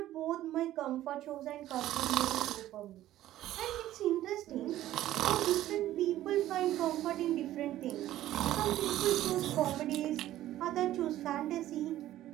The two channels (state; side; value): quieter; left; 13.8 dB